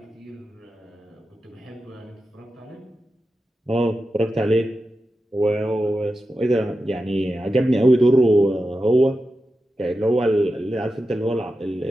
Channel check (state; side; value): normal; both; correlation 0.91